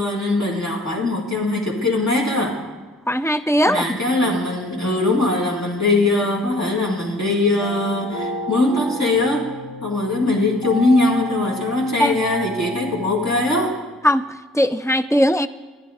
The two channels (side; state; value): both; normal; correlation 0.55